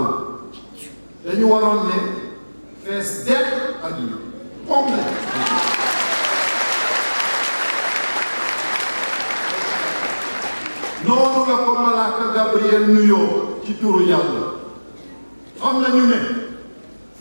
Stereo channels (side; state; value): both; inverted; correlation -1.00